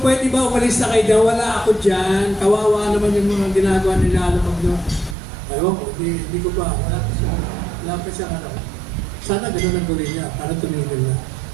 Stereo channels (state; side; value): drops out; left; at 5.2 s